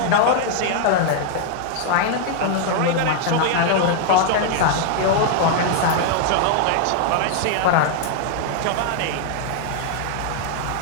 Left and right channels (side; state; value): both; different; correlation 0.00